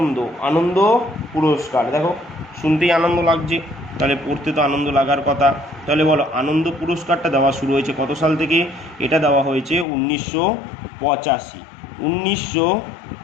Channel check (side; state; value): right; drops out; at 9.9 s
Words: আনন্দ পুরস্কার। দেখো শুনতেই আনন্দ লাগছে, তাহলে পড়তে তো আনন্দ লাগার কথা। তাহলে বলো আনন্দ পুরস্কারটা দেওয়া শুরু হয়েছে কত সাল থেকে? এটা দেওয়া হয়েছে 1985।